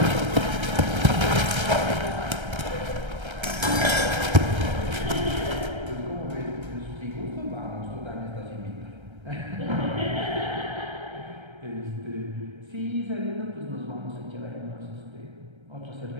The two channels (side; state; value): left; late; 1.3 ms